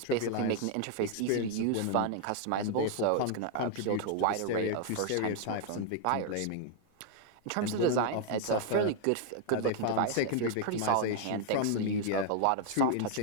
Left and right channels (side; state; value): both; different; correlation 0.00